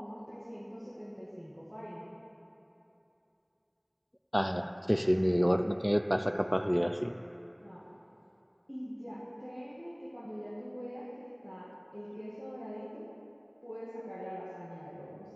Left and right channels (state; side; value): identical; both; correlation 1.00